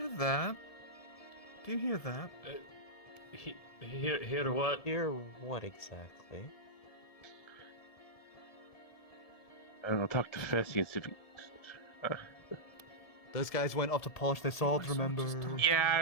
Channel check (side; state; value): right; late; 1.7 ms